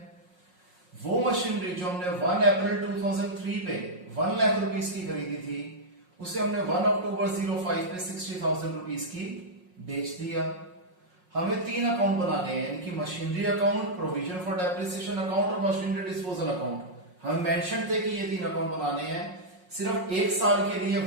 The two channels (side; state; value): left; late; 5.5 ms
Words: वो मशीनरी जो हमने 1 अप्रैल 2003 पे 1 लाख रुपीस की खरीदी थी, उसे हमने 1 अक्टूबर 05 पे 60,000 रुपीस की बेच दिया। हमें 3 अकाउंट बनाने हैं, यानी कि machinery account, provision for depreciation account और मशीनरी डिस्पोजल अकाउंट। हमें मेंशन थे कि ये 3 अकाउंट बनाने हैं सिर्फ 1 साल के लिए,